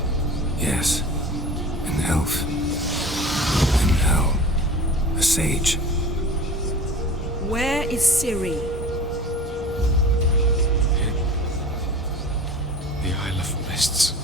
Yes. An elf. An hell. A sage. Where is Ciri? The Isle of Mists.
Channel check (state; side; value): normal; both; correlation 0.38